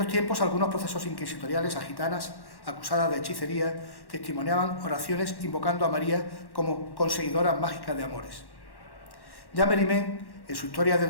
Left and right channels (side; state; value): right; late; 1.1 ms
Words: tiempos, algunos procesos inquisitoriales a gitanas acusadas de hechicería testimoniaban oraciones invocando a María como conseguidora mágica de amores. Ya Mérimée, en su Historia de